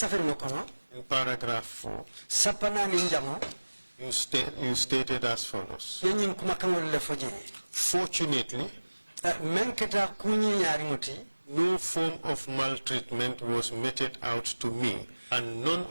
ngokono in paragraph 4, sapana ni njamo you stated as follows. yenyin kumakan le foje. Fortunately, menketa kunyi nyari ngoti no form of maltreatment was meted out to me, and none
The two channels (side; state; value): both; inverted; correlation -1.00